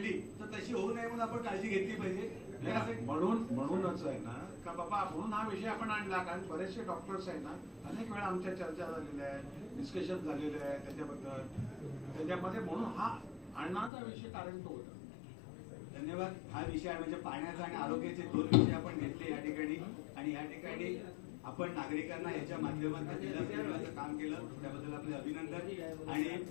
तर तशी होऊ नये म्हणून आपण काळजी घेतली पाहिजे. म्हणूनच आहे ना का बाबा म्हणून हा विषय आपण आणला, कारण बरेचसे डॉक्टर्स आहेत ना अनेक वेळा आमच्या चर्चा झालेल्या आहे, डिस्कशन झालेलं आहे त्याच्याबद्दल, त्याच्यामध्ये म्हणून हा आणण्याचा विषय कारण तो होता. धन्यवाद. हा विषय म्हणजे पाण्याचा आणि आरोग्याचे 2 विषय आपण घेतले या ठिकाणी आणि या ठिकाणी आपण नागरिकांना याच्या माध्यमातून दिलासा देण्याचं काम केलं, त्याबद्दल आपले अभिनंदन. आणि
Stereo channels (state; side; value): drops out; right; at 13.9 s